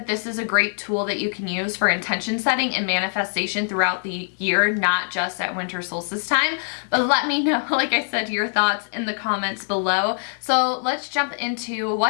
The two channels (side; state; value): right; silent; digital silence